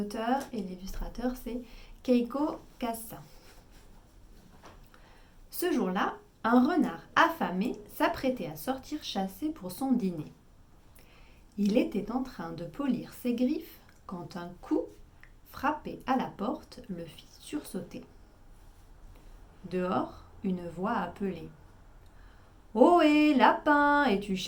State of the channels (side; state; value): both; identical; correlation 1.00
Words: et l'illustrateur, c'est Keiko Kassa. Ce jour-là, un renard affamé s'apprêtait à sortir chasser pour son dîner. Il était en train de polir ses griffes quand un coup, frappé à la porte, le fit sursauter. Dehors, une voix appelait. « Ohé, lapin, es-tu